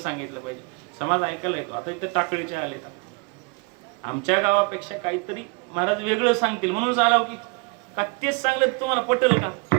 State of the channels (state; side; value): quieter; left; 31.9 dB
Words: पाहिजे. समाज ऐकायला येतो. आता इथं टाकळीचे आले का आमच्या गावापेक्षा काहीतरी महाराज वेगळं सांगतील म्हणून आलो की का तेच सांगलं तुम्हाला पटेल का?